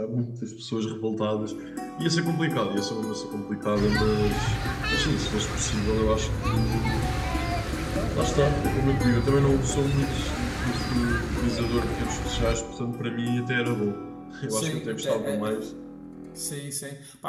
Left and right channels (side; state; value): both; identical; correlation 1.00